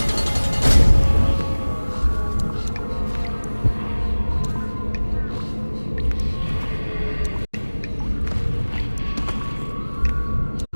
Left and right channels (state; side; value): inverted; both; correlation -1.00